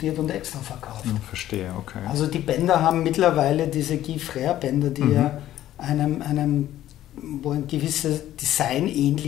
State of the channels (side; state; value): right; quieter; 13.1 dB